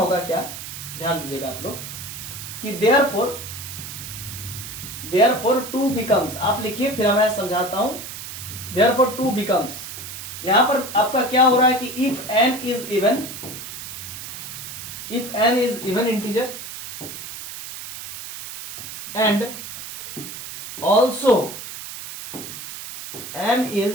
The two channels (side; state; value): right; noise; hiss, 10 dB below the sound